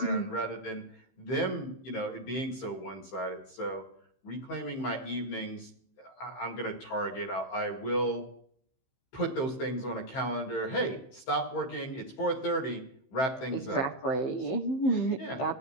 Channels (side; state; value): right; late; 15 ms